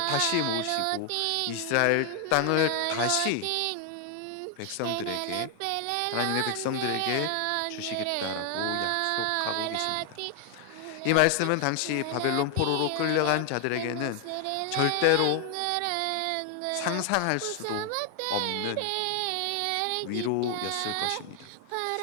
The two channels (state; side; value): different; both; correlation 0.00